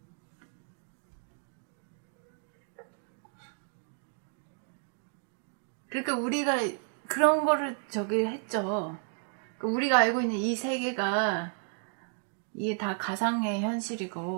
그러니까 우리가 그런 거를 저기 했죠. 그러니까 우리가 알고 있는 이 세계가 이게 다 가상의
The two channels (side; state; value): left; silent; 56 dB below the other